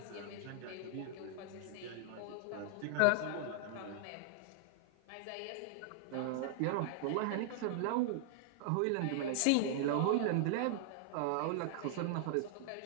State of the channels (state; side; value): different; both; correlation -0.01